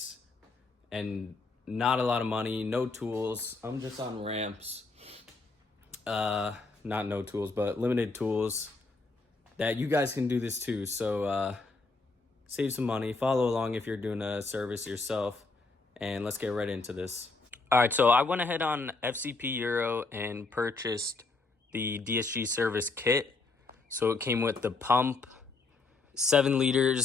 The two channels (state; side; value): quieter; right; 3.7 dB